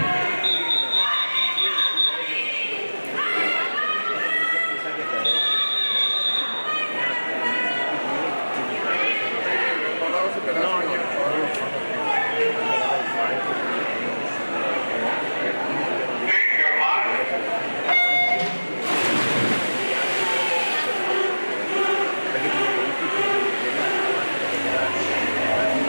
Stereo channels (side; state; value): both; inverted; correlation -1.00